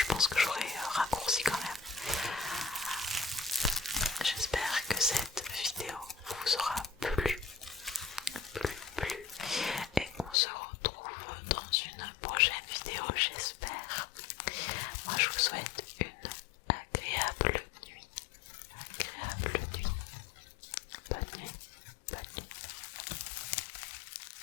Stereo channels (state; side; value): drops out; right; at 10.4 s